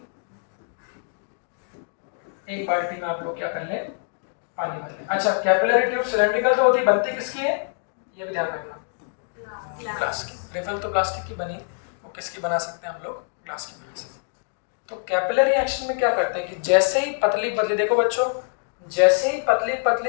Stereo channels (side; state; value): right; silent; 62 dB below the other